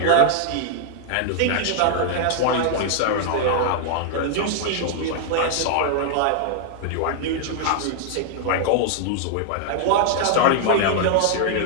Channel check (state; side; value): different; both; correlation -0.01